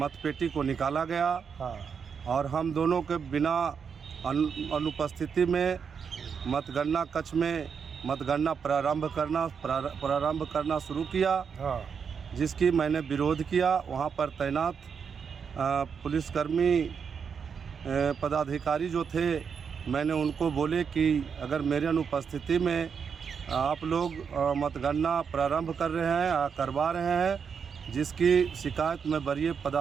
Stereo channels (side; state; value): left; quieter; 6.5 dB